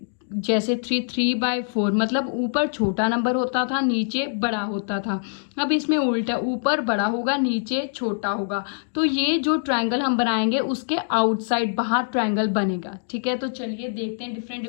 जैसे 3/4 मतलब ऊपर छोटा नंबर होता था, नीचे बड़ा होता था। अब इसमें उल्टा, ऊपर बड़ा होगा, नीचे छोटा होगा। तो ये जो ट्रायंगल हम बनाएंगे उसके आउटसाइड बाहर ट्रायंगल बनेगा। ठीक है, तो चलिए देखते हैं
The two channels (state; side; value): silent; right; digital silence